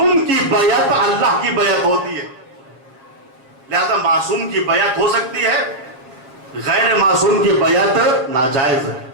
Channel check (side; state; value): left; late; 7.5 ms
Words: کی بیعت اللہ کی بیعت ہوتی ہے، لہذا معصوم کی بیعت ہو سکتی ہے، غیر معصوم کی بیعت ناجائز ہے۔